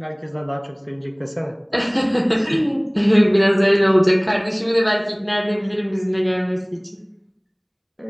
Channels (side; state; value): both; identical; correlation 1.00